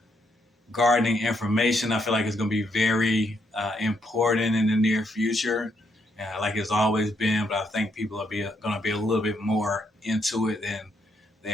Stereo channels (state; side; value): normal; both; correlation 0.76